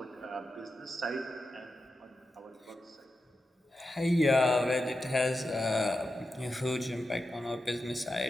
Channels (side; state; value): both; normal; correlation 0.90